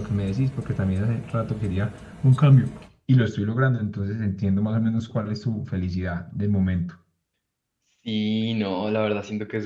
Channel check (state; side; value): identical; both; correlation 1.00